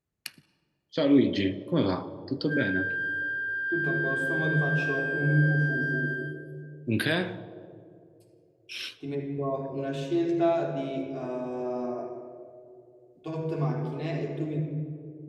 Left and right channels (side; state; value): both; identical; correlation 1.00